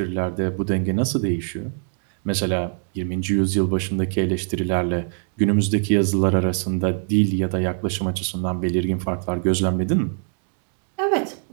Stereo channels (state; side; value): silent; left; 63 dB below the other